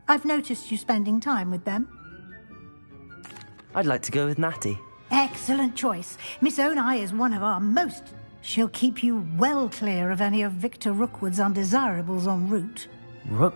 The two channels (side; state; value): both; inverted; correlation -1.00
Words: I've noticed you spending time with them. I'd like to go with Natty. Excellent choice. Miss Onai is one of our most. She'll keep you well clear of any of Victor Rookwood's undesirables en route.